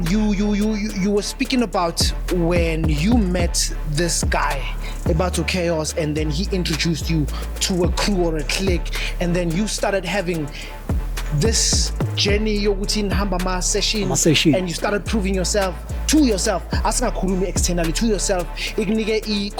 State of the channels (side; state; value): both; identical; correlation 1.00